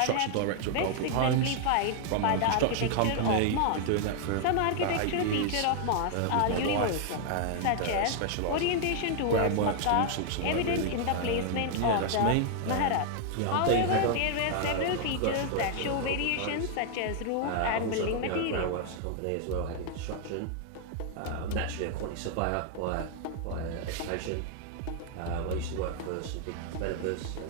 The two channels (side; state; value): both; different; correlation 0.00